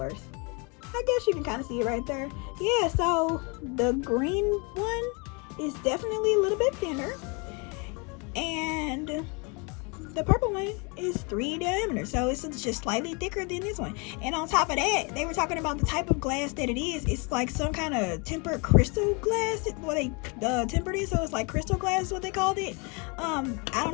I guess you can kind of see it right there. Yeah, so the green one is definitely a little bit thinner, and the purple one is 3 diameter, so it's just slightly thicker than this one. And on top of that, they were talking about the type of glass that it is. It's like some kind of tempered crystal glass. Well, they tempered it, so it's like crystal glass is what they called it. I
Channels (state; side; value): quieter; right; 31.8 dB